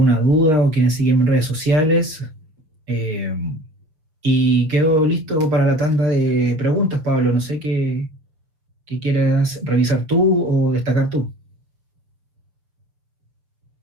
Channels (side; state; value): left; late; 6.4 ms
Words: duda o quieren seguirme en redes sociales. Y quedo listo para la tanda de preguntas, Pablo. No sé qué quieras revisar tú o destacar tú.